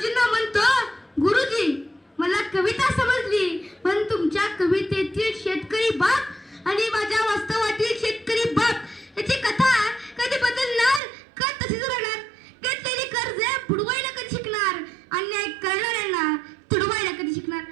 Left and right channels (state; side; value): drops out; left; at 11.0 s